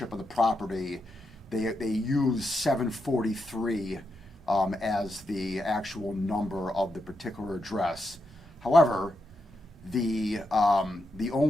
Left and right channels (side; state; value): both; normal; correlation 0.84